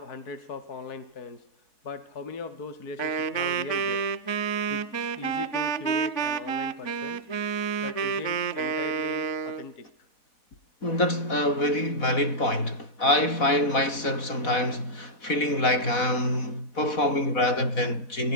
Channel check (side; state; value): right; late; 4.1 ms